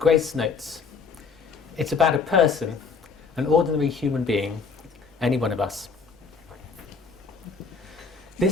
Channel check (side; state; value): right; quieter; 5.0 dB